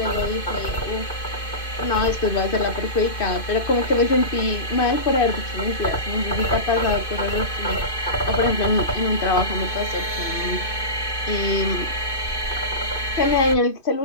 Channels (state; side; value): late; right; 2.5 ms